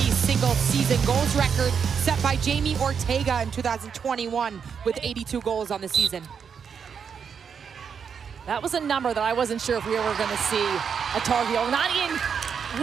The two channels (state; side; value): quieter; left; 6.8 dB